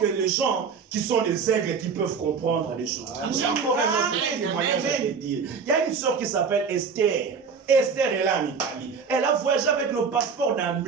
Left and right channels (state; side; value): quieter; left; 5.7 dB